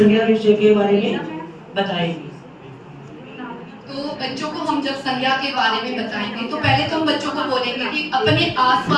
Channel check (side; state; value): both; identical; correlation 1.00